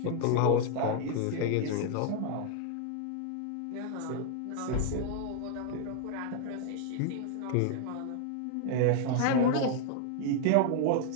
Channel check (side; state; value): both; different; correlation 0.00